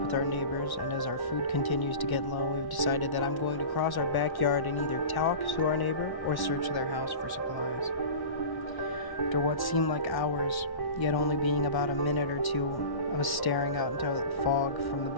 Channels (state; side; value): late; right; 1.1 ms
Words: with our neighbors, and as our food continues to get low, we've decided that I'm going to cross our backyard and either talk to our neighbor or search their house for supplies. After what seemed like hours, yet only being about a minute or two, I was staring out into the fog from the